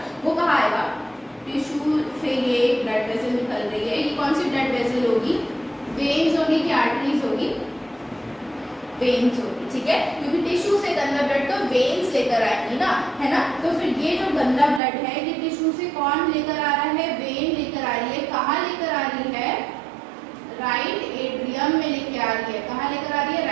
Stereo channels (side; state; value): left; drops out; at 14.8 s